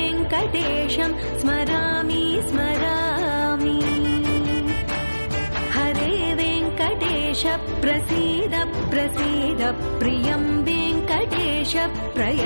स्मरामि स्मरामि हरे वेङ्कटेश प्रसीद प्रसीद प्रियं वेङ्कटेश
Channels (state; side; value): inverted; both; correlation -1.00